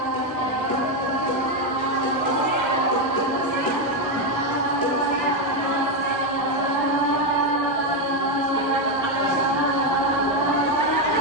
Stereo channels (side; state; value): both; normal; correlation 0.07